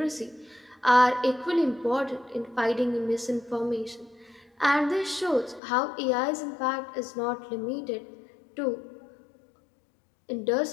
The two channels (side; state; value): right; drops out; at 5.6 s